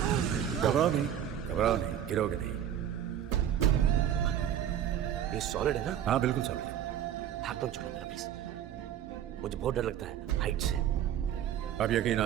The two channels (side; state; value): left; quieter; 10.2 dB